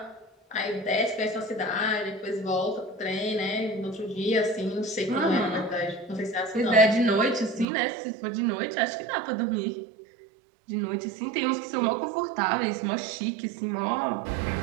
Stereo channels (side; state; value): left; drops out; at 7.7 s